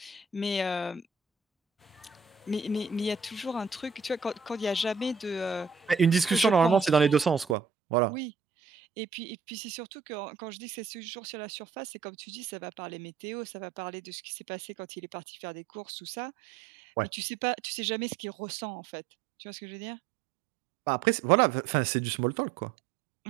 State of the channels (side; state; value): left; drops out; at 7.6 s